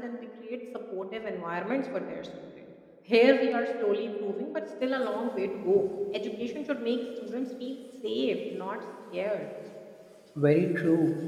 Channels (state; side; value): identical; both; correlation 1.00